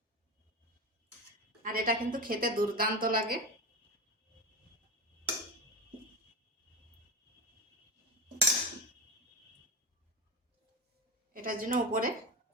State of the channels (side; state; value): both; normal; correlation 0.20